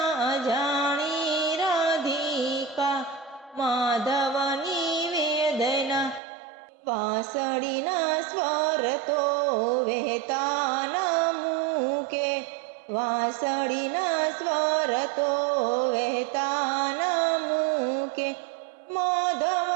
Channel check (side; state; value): left; drops out; at 6.2 s